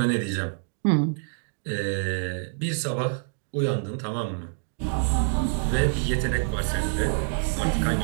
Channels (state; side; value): silent; left; digital silence